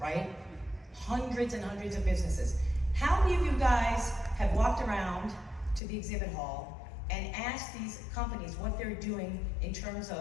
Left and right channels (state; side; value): drops out; right; at 5.8 s